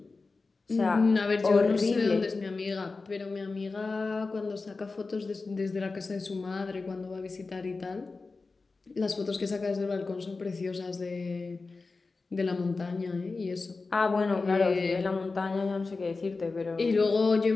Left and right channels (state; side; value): quieter; right; 3.9 dB